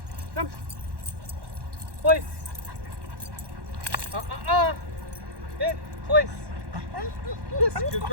come, place. Hit, place. Yes, good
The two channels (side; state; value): left; late; 1.1 ms